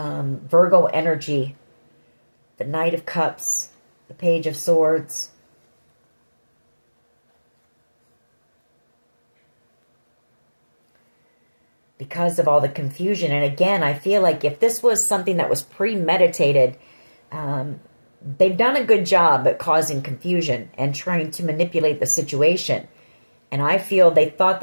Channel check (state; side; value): inverted; both; correlation -1.00